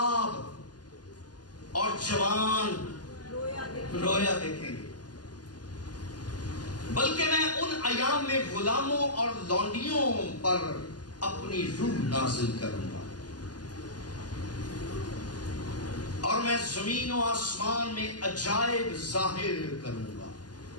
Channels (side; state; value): right; late; 0.70 ms